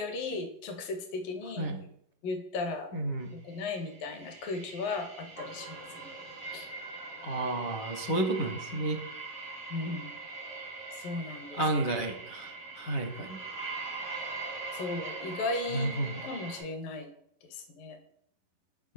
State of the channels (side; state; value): right; late; 11 ms